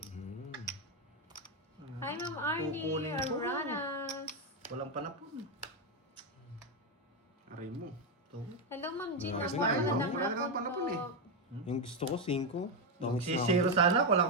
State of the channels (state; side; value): normal; both; correlation 0.05